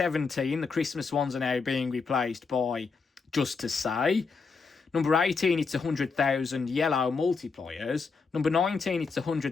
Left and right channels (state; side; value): quieter; right; 4.9 dB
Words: the Christmas ones are now being replaced by Just to Say. Number 18, it's 100,000 yellow multipliers. Number 19, it's